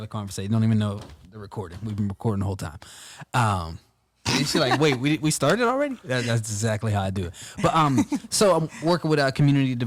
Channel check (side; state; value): both; identical; correlation 1.00